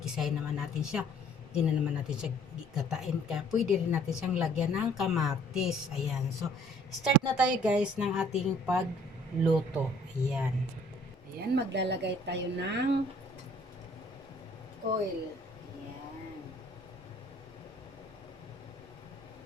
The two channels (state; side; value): normal; both; correlation 0.58